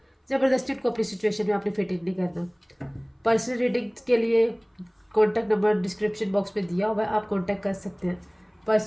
ज़बरदस्ती उनको अपनी सिचुएशन में आपने फिट इन नहीं करना। पर्सनल रीडिंग के लिए कॉन्टैक्ट नंबर डिस्क्रिप्शन बॉक्स में दिया हुआ है, आप कॉन्टैक्ट कर सकते हैं।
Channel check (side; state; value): both; identical; correlation 1.00